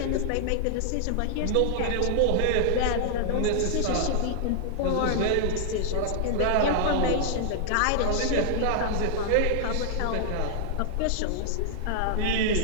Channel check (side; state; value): both; different; correlation -0.01